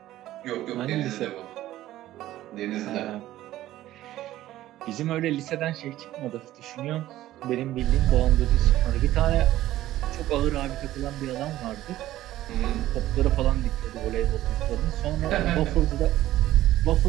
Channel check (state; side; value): quieter; left; 14.5 dB